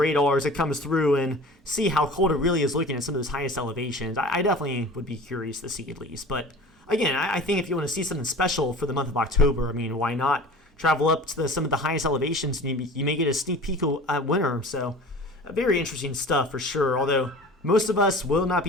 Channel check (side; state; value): both; normal; correlation 0.40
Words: as it comes through and see how cold it really is looking at some of those highest elevations. I definitely would be curious to see at least. But again, I think if you want to see something special for the month of October, I mean, why not travel up to some of the highest elevations, and you may get a sneak peek at winter. So very interesting stuff for sure, although most of us will not